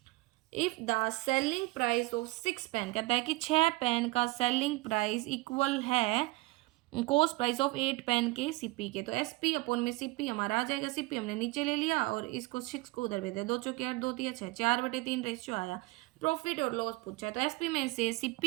if the selling price of 6 pen, कहता है कि 6 पेन का सेलिंग प्राइस इक्वल है कॉस्ट प्राइस ऑफ 8 पेन के सीपी के, तो एसपी अपॉन में सीपी हमारा आ जाएगा। सीपी हमने नीचे ले लिया और इसको 6 को उधर भेज दिया, 2 चौके 8, 2 तिया 6, 4/3 रेशियो आया। प्रॉफिट और लॉस पूछा है तो एसपी में से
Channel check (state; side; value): quieter; left; 22.1 dB